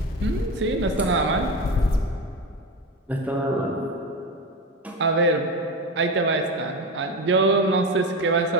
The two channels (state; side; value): normal; both; correlation 0.21